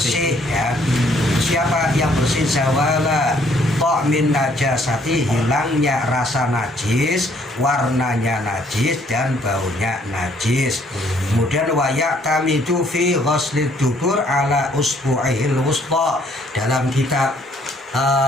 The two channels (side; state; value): both; normal; correlation 0.64